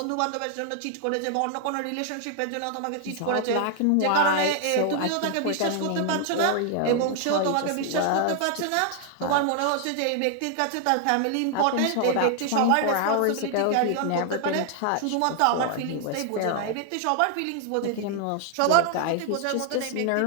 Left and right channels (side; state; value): both; different; correlation 0.00